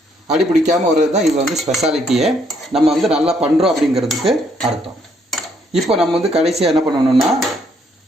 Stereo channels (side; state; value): both; normal; correlation 0.70